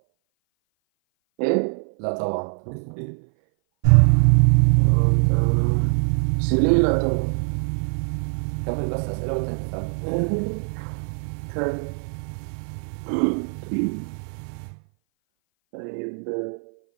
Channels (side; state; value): left; silent; 58 dB below the other